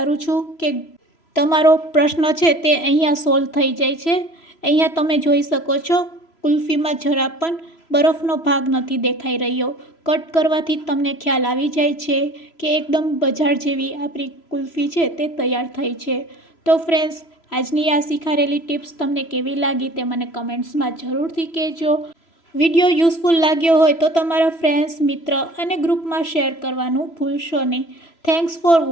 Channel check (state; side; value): late; right; 3.0 ms